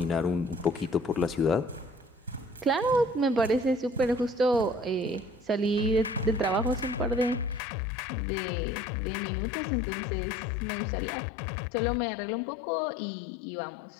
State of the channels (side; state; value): right; drops out; at 7.6 s